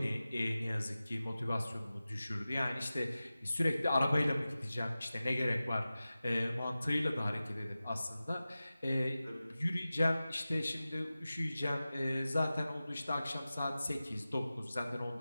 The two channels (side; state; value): both; inverted; correlation -0.96